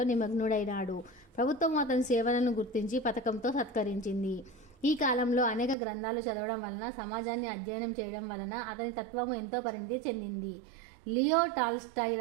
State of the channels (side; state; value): left; drops out; at 5.8 s